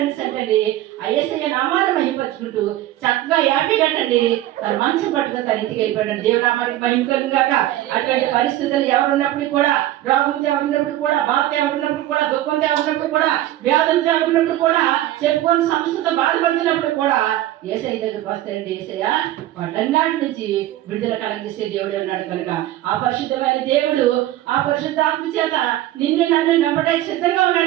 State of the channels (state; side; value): quieter; left; 14.4 dB